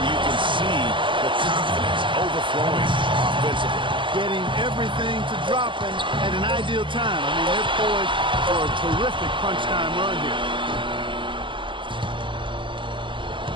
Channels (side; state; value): left; late; 0.24 ms